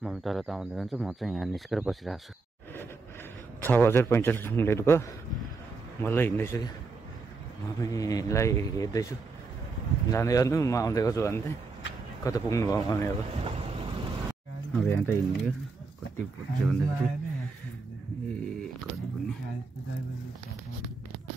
तल त आउँदै जान्छ, म चाहिँ यहाँ निस्केर बसिरहेको छु। 6:45 मिनट भयो, मलाई हिँड्दैछु कि मम्मीलाई हेर्दैछु जाँदै गर्नु म आउँदै गर्छु भन्दै। कता पुग्नु भयो मम्मी अब यहाँ त हिँड्ने कति पुग्छ भन्दाखेरि कति पुग्ने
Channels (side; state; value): left; quieter; 4.1 dB